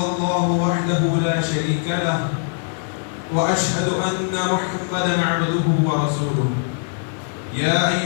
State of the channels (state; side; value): silent; right; 65 dB below the other